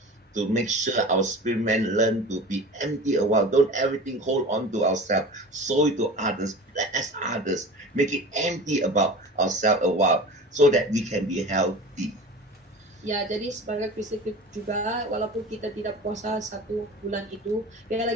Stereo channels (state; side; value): normal; both; correlation 0.37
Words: to make sure our spirit man learn to be empty a while. Don't everything hold on to ourselves. Sow it to others, bless others, make it empty about ourselves a while, so that we can be healthy. Ya, jadi sebagai Kristen juga, walaupun kita tidak puasa 1 bulan itu,